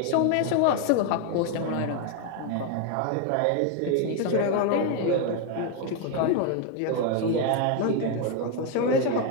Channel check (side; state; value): both; different; correlation 0.01